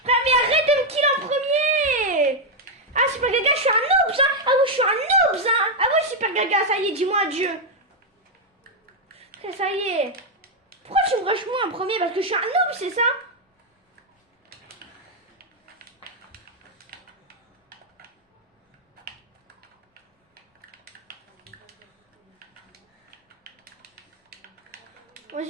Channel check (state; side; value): normal; both; correlation 0.01